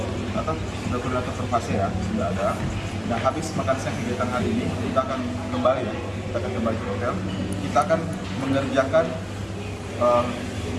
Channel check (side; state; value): both; identical; correlation 1.00